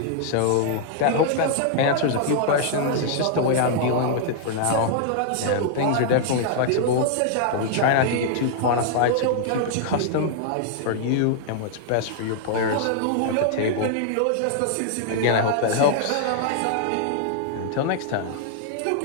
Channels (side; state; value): both; different; correlation -0.01